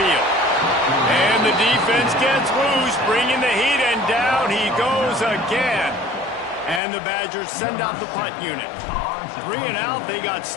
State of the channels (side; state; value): right; drops out; at 6.8 s